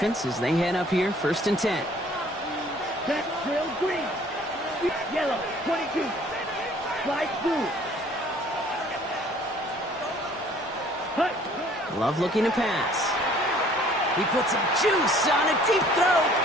as they head up here, 1st and 10. Back trail green. Yellow, 22. Slide blue. Hut. Love looking to pass. He puts some juice on a deep throw.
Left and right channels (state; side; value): normal; both; correlation 0.56